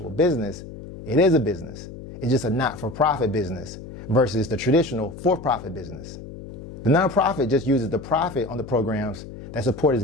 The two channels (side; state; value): left; noise; hum, 13 dB below the sound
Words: business, it is a business. It's just a not-for-profit business versus the traditional for-profit business. The nonprofit just uses the profit on the programs that support its